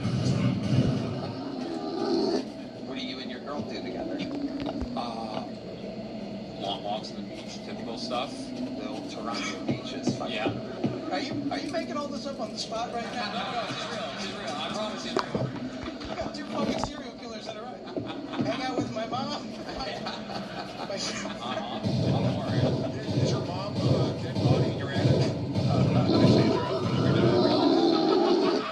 What do you and your girl do together? Long walks on the beach, typical stuff. The old Toronto beaches. Yeah. Are you making all this up on the spot right now? No, it's real. It's real. I promise it's real. I got 2 fucking serial killers that are right. Hang out with my mom. Don't worry. Is your mom dead body in your attic?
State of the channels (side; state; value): both; identical; correlation 1.00